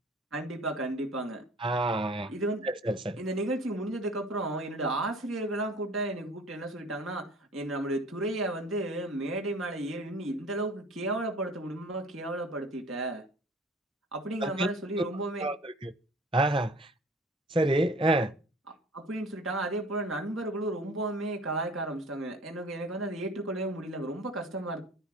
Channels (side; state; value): both; normal; correlation 0.48